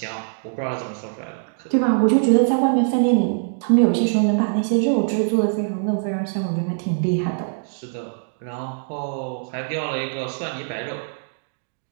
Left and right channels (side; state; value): left; silent; digital silence